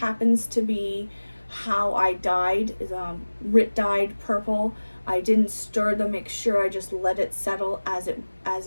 to be how I dyed, is Rit dyed purple. I didn't stir the mixture, I just let it settle as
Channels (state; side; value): inverted; both; correlation -1.00